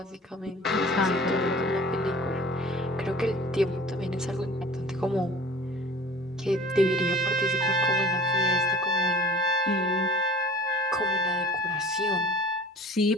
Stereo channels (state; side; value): normal; both; correlation 0.45